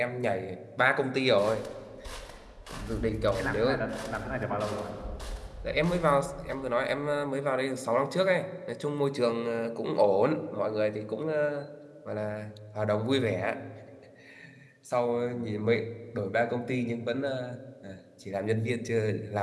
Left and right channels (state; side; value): identical; both; correlation 1.00